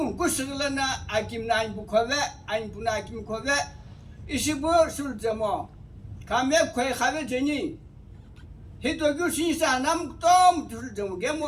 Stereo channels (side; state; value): both; identical; correlation 1.00